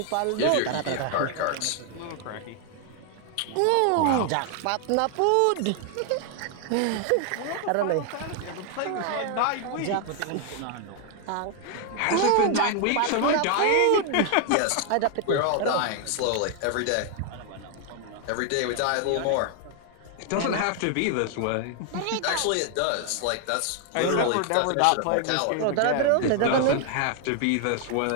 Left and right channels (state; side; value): different; both; correlation 0.00